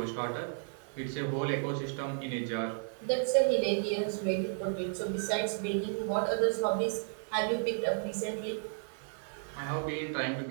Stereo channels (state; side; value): silent; left; digital silence